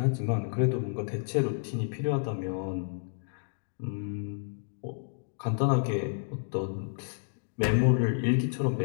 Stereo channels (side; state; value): right; silent; digital silence